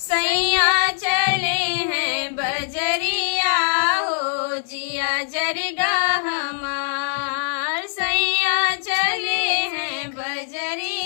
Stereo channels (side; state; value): right; silent; 64 dB below the other